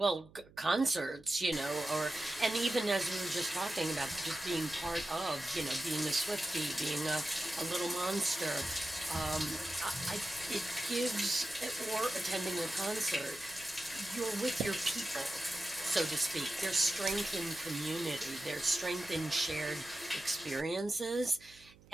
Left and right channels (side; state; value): right; noise; hum, 25 dB below the sound